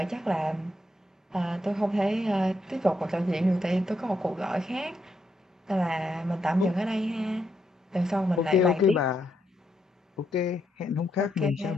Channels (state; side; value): normal; both; correlation 0.79